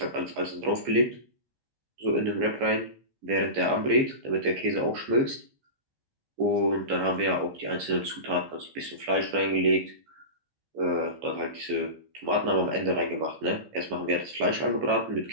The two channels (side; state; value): left; late; 15 ms